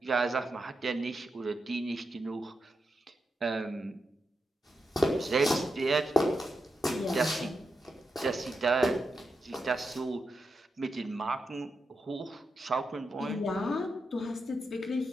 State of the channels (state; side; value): normal; both; correlation 0.86